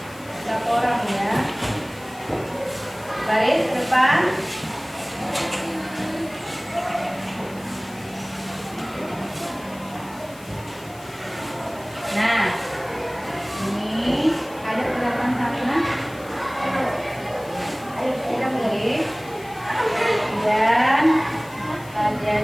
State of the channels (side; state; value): left; noise; hiss, 22 dB below the sound